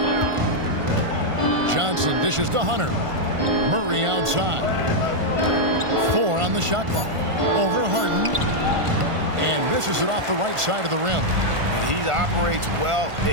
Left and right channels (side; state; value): left; late; 1.5 ms